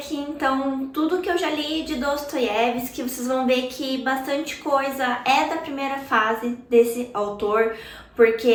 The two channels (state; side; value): identical; both; correlation 1.00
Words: então tudo que eu já li de Dostoiévski. Vocês vão ver que bastante coisa é da primeira fase desse autor,